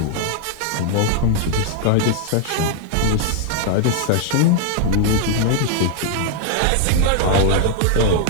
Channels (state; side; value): different; both; correlation 0.00